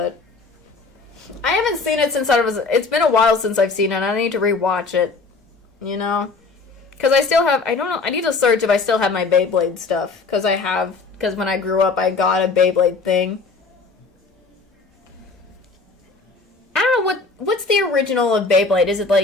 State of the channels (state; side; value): quieter; right; 4.1 dB